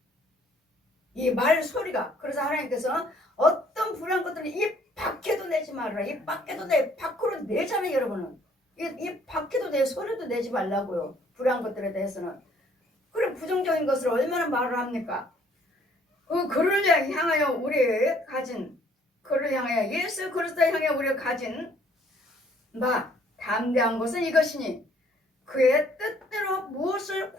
이 말 소리가. 그래서 하나님께서는 어떤 불안 것들을 입 밖에도 내지 말아라. 입 밖에도 밖으로 내잖아요. 여러분은. 입 밖에도 내 소리도 내지 말라고요. 불안 것들에 대해서는. 그래 부정적인 것을 얼마나 말을 합니까? 그를 향하여 우리 가진 그를 향하여 예수 그리스도를 향해 우리가 가진 담대한 것은 이것이니 그의 뜻대로 무엇을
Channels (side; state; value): both; normal; correlation 0.61